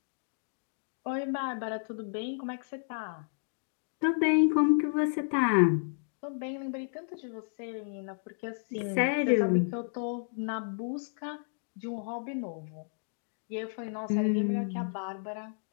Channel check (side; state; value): right; silent; digital silence